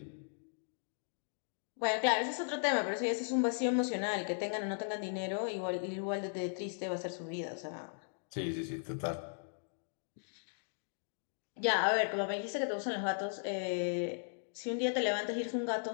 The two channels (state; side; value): silent; right; digital silence